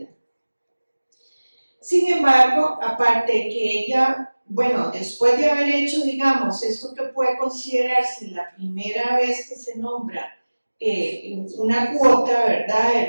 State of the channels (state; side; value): inverted; both; correlation -1.00